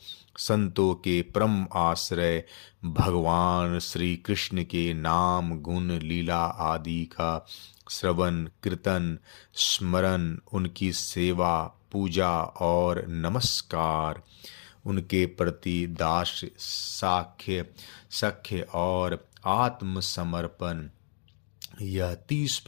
संतों के परम आश्रय भगवान श्री कृष्ण के नाम, गुण, लीला आदि का श्रवण, कीर्तन, स्मरण, उनकी सेवा, पूजा और नमस्कार, उनके प्रति दास्य, साख्य, सख्य और आत्मसमर्पण, यह 30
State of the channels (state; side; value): silent; right; digital silence